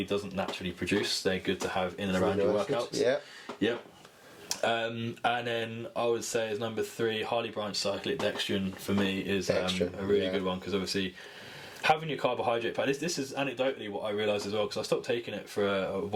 doesn't naturally produce. They're good to have in and around your workouts. And then I would say as number three, highly branched cyclic dextrin for me is a really good one, because obviously having your carbohydrate pack, this is anecdotally what I realised as well, because I stopped taking it for a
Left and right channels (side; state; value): both; identical; correlation 1.00